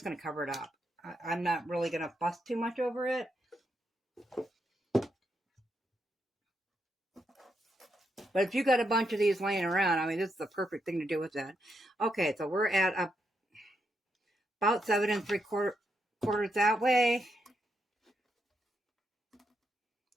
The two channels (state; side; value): normal; both; correlation 0.81